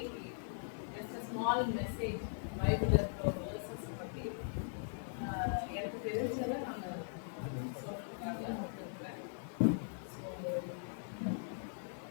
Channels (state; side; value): silent; right; digital silence